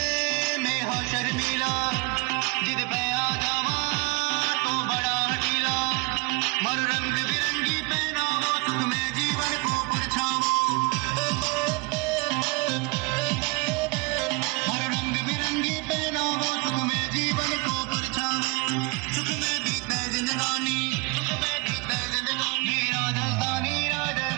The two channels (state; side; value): quieter; left; 27.6 dB